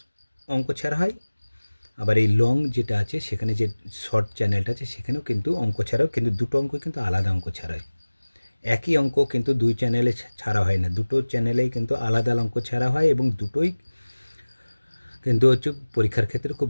অঙ্ক ছাড়া হয়, আবার এই লং যেটা আছে সেখানে যে শর্ট চ্যানেলটা আছে সেখানেও কিন্তু অঙ্ক ছাড়াও, কিন্তু দুটো অঙ্ক কিন্তু আলাদা অঙ্ক ছাড়া হয়। একই অঙ্ক কিন্তু দুই চ্যানেলে ছাড়া হয় না, দুটো চ্যানেলেই কিন্তু আলাদা অঙ্ক ছাড়া হয়, এবং দুটোই কিন্তু হচ্ছে পরীক্ষার ক্ষেত্রে খুব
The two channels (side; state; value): both; inverted; correlation -1.00